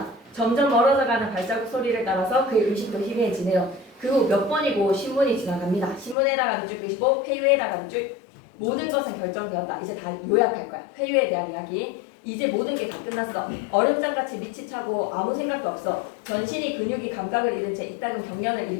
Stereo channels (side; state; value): right; drops out; at 6.2 s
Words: 점점 멀어져가는 발자국 소리를 따라서 그의 의식도 희미해지네요. 그 후 몇 번이고 신문이 지나갑니다. 신문에다가 밑줄 끄시고 회유에다가 밑줄 모든 것은 결정되었다. 이제 다 요약할 거야. 회유에 대한 이야기. 이제 모든 게 다 끝났어. 얼음장같이 밑이 차고 아무 생각도 없어. 전신이 근육이 감각을 잃은 채 이따금 경련을